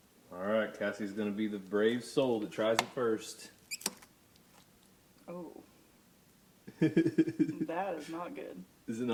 all right, Cassie's going to be the brave soul that tries it first. Oh. That is not good. Is it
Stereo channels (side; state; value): both; identical; correlation 1.00